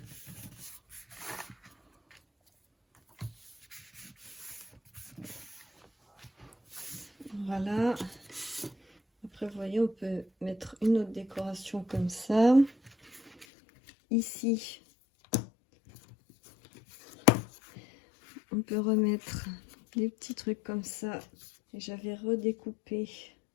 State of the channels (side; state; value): right; drops out; at 13.5 s